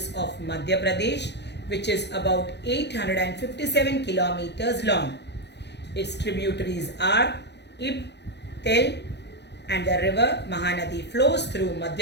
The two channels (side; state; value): right; late; 0.50 ms